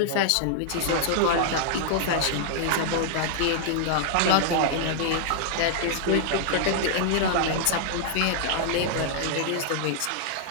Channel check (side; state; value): both; different; correlation -0.01